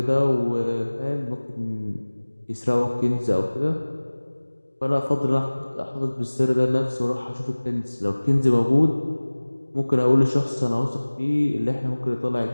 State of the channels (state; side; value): inverted; both; correlation -1.00